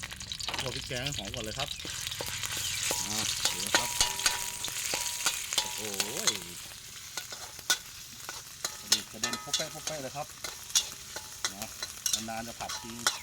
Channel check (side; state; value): both; identical; correlation 1.00